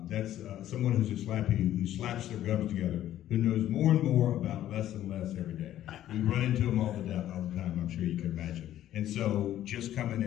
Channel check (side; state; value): right; quieter; 12.5 dB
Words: that's someone who's a slappy who slaps their gums together, who knows more and more about less and less every day. We run into them all the time, I'm sure you can imagine. And so just coming